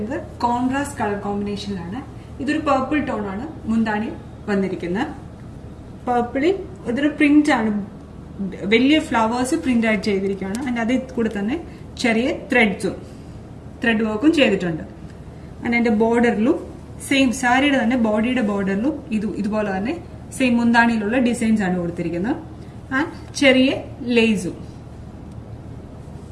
കോൺട്രാസ്റ്റ് കളർ കോമ്പിനേഷനിലാണ്. ഇതൊരു പർപ്പിൾ ടോൺ ആണ് മുന്താണി വന്നിരിക്കുന്നത്. പർപ്പിളിൽ ഇതൊരു പ്രിന്റ് ആണ്, വലിയ ഫ്ലവേഴ്സ് പ്രിന്റ് ആയിട്ട് ചെയ്തിരിക്കുകയാണ്. ആൻഡ് അതിൽ കൂടെ തന്നെ ചെറിയ ത്രെഡ് വർക്കും ചെയ്തിട്ടുണ്ട്. ആൻഡ് അതിന്റെ ബോർഡറിലും സെയിം സാരിയുടെ തന്നെ ബോഡിയുടെ ബോർഡറിലും ഇതുപോലെ തന്നെ സെയിം മുന്താണിയിലുള്ള ഡിസൈൻസ് ആണ് കൊടുത്തിരിക്കുന്നത്. ആൻഡ് ചെറിയ ലേസും.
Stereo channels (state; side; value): identical; both; correlation 1.00